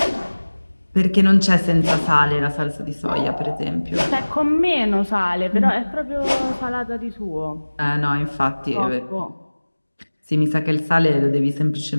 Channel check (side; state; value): both; inverted; correlation -1.00